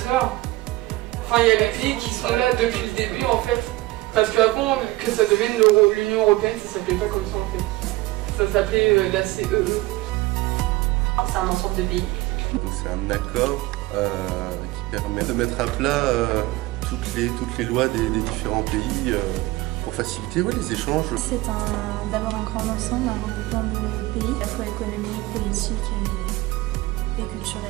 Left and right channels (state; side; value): quieter; left; 19.2 dB